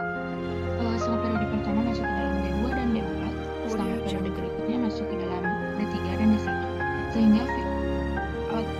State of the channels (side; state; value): both; identical; correlation 1.00